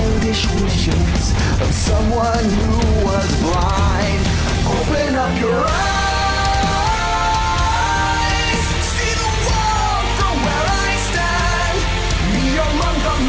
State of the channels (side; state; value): both; identical; correlation 1.00